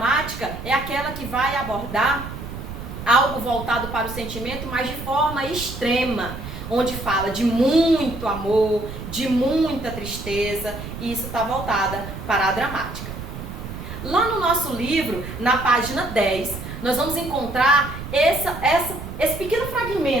é aquela que vai abordar algo voltado para o sentimento, mas de forma extrema, onde fala de muito amor, de muita tristeza, e isso está voltada para a dramática. Lá no nosso livro, na página 10, nós vamos encontrar esse pequeno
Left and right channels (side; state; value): right; noise; rumble, 10 dB below the sound